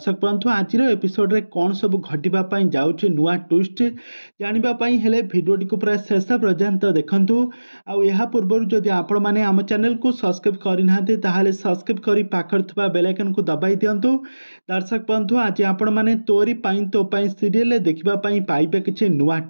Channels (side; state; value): both; inverted; correlation -1.00